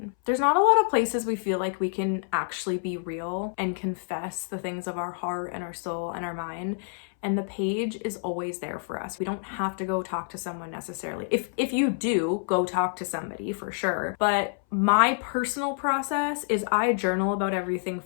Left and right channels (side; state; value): right; silent; 60 dB below the other